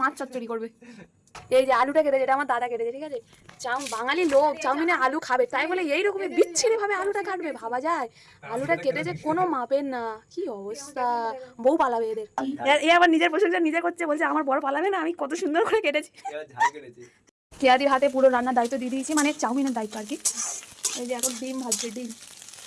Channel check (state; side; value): identical; both; correlation 1.00